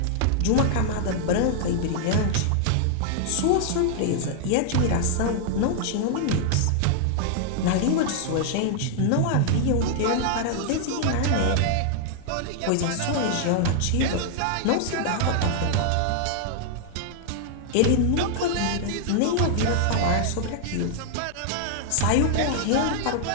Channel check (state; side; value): different; both; correlation -0.01